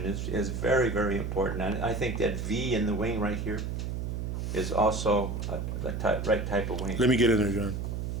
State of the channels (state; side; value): noise; right; hum, 3 dB below the sound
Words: is very, very important. And I think that V in the wing right here is also the right type of wing. Let me get in there, John.